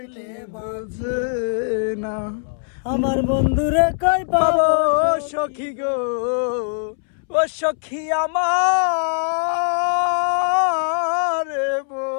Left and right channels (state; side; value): silent; right; 65 dB below the other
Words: বাজে না। আমার বন্ধুরে কই পাবো সখী গো, ও সখী আমার